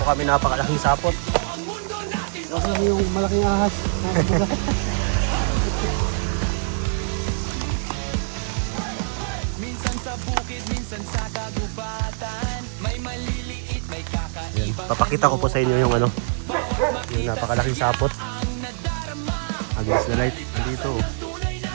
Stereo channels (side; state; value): left; silent; digital silence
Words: kami napakalaking sapot. Kasi lang yung malaking ahas mga kabuga. Minsan sa bukid, minsan sa kagubatan. May maliliit, may kakaiba. Papakita ko po sa inyo yung yung napakalaking sapot. Against the light. Andito.